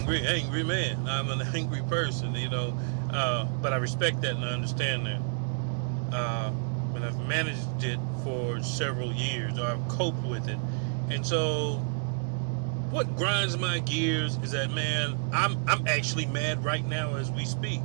man. I'm an angry person, but I respect that and I understand that. And I've managed it for several years, or I've coped with it. And so what grinds my gears is that, man, I'm actually mad right now as we speak.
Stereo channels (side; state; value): left; silent; digital silence